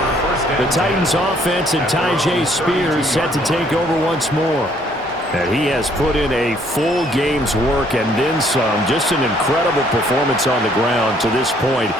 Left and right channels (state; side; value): normal; both; correlation 0.64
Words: The Titans offense and Tyjae Spears set to take over once more. And he has put in a full game's work and then some. Just an incredible performance on the ground to this point